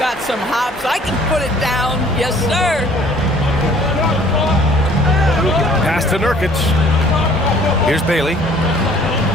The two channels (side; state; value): both; normal; correlation 0.55